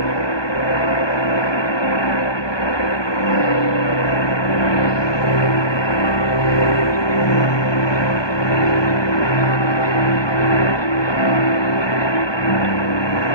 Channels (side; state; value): right; late; 1.2 ms